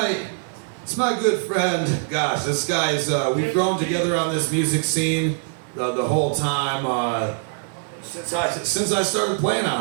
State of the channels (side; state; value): left; silent; digital silence